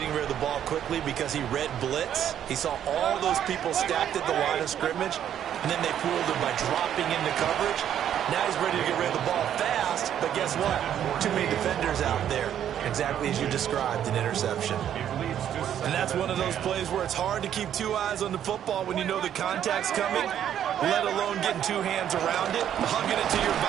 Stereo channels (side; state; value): left; quieter; 10.1 dB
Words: rid of the ball quickly because he read blitz. He saw all those people stacked at the line of scrimmage, and then they fooled him by dropping into coverage. Now he's ready to get rid of the ball fast, but guess what? Too many defenders out there. Exactly as you described, an interception. And that's one of those plays where it's hard to keep 2 eyes on the football when you know the contact's coming, let alone getting 2 hands around it, hugging it to your